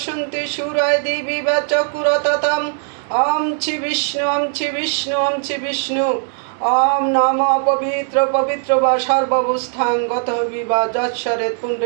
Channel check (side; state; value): left; silent; digital silence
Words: সুরায় দিবি চকুরততম। ওম ছি বিষ্ণু ওম ছি বিষ্ণু ওম ছি বিষ্ণু। ওম নম পবিত্র পবিত্র বা সর্বাবস্থাং গত বিবা যৎসরে